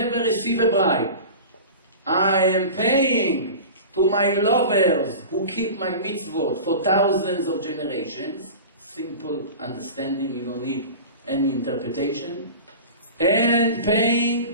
receive a bribe. I am paying to my lovers who keep my mitzvot for thousands of generations. Simple understanding, you don't need any interpretation. And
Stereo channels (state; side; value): inverted; both; correlation -0.34